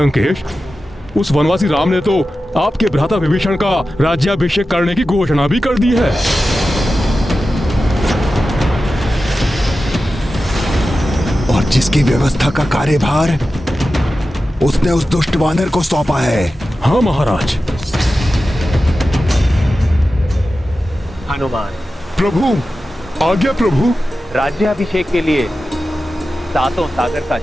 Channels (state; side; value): normal; both; correlation 0.93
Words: उस वनवासी राम ने तो आपके भ्राता विभीषण का राज्याभिषेक करने की घोषणा भी कर दी है। और जिसकी व्यवस्था का कार्यभार उसने उस दुष्ट वानर को सौंपा है। हाँ महाराज। हनुमान, प्रभु, आज्ञा प्रभु। राज्याभिषेक के लिए सातों सागर का